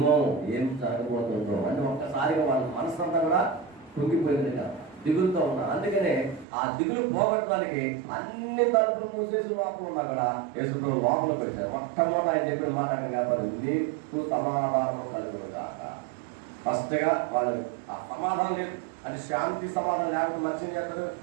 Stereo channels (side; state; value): left; drops out; at 6.5 s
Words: ఏం జరగబోతుందో అంటే ఒక్కసారిగా వాళ్ళ మనసు అంతా కూడా కుంగిపోయింది కదా, దిగులుతో ఉన్నారు. అందుకనే ఆ దిగులు పోగొట్టడానికి అన్ని తలుపులు మూసేసి లోపల ఉన్నా కూడా యేసు ప్రభు లోపలికి వచ్చారు. మొట్టమొదటి ఆయన చెప్పిన మాట కాబట్టి నీకు సమాధానం కలుగును కాక. ఫస్ట్గా వాళ్ళు ఆ సమాధానం లేదు అంటే శాంతి సమాధానం లేకపోతే మనిషిని చేస్తారు,